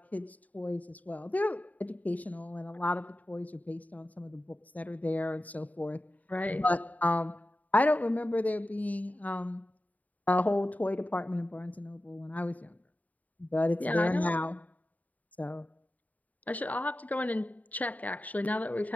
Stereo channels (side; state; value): right; late; 0.074 ms